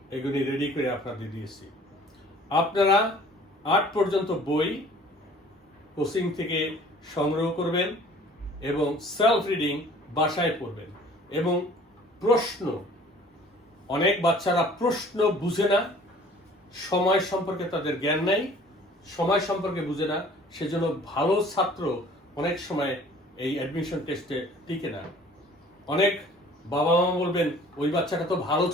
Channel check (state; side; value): normal; both; correlation 0.51